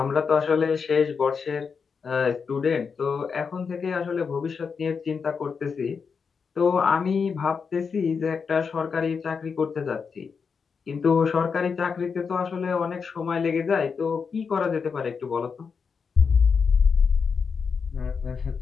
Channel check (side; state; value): right; quieter; 5.7 dB